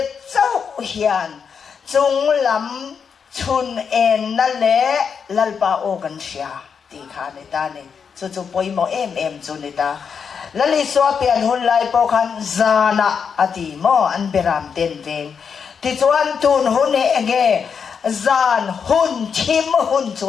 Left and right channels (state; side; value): quieter; right; 6.5 dB